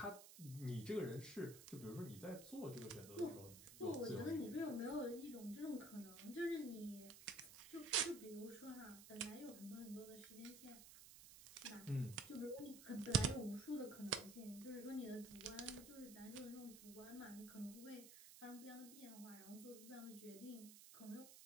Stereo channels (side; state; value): right; noise; hiss, 14 dB below the sound